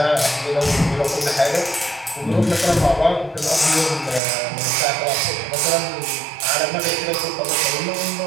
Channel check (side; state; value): left; drops out; at 4.2 s